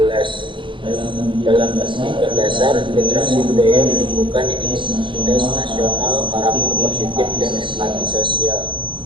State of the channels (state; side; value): late; left; 0.24 ms